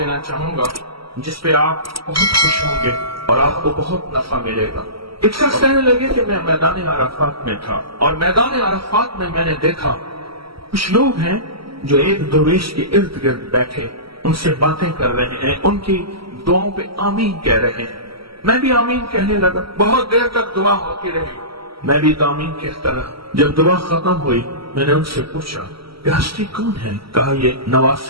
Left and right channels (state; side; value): late; left; 0.75 ms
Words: چاہوں گا جس پہ آپ بہت خوش ہوں گے اور آپ کو بہت نفع ملے گا۔ ایک شخص کہنے لگے کہ میں میدان عرفات میں تھا اور میدان عرفات میں نے دیکھا کچھ لوگ ہیں جو ایک درویش کے ارد گرد بیٹھے ان سے باتیں کر رہے ہیں، ان کی دعاؤں پہ آمین کہہ رہے ہیں۔ میں بھی آمین کہنے لگا، بہت دیر تک دعا ہوتی رہی، میں بھی آمین کہتا رہا۔ جب دعا ختم ہوئی میں نے ان سے پوچھا کہ ہستی کون ہے؟ کہا یہ